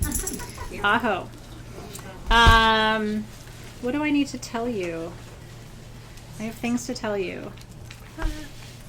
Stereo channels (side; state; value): both; identical; correlation 1.00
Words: Aho. What do I need to tell you? I have things to tell you.